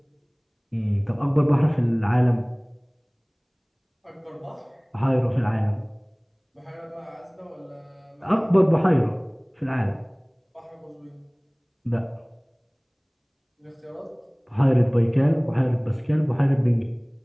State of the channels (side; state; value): both; identical; correlation 1.00